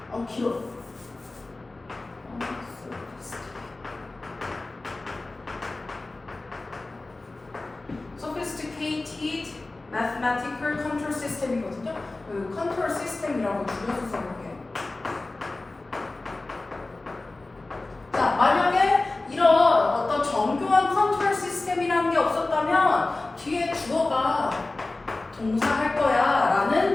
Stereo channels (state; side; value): quieter; right; 3.1 dB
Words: 길어. sophisticated mathematical control system이거든요. 그 컨트롤 시스템이라고 줄여서 써볼게요. 자, 만약에 이런 어떤 정교한 컨트롤 시스템이라는 게 없었다면 뒤에 주어가 동사할 거야 라는